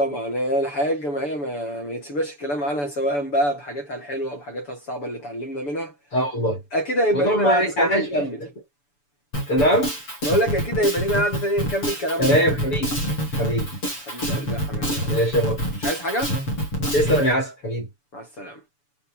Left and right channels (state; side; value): late; right; 6.9 ms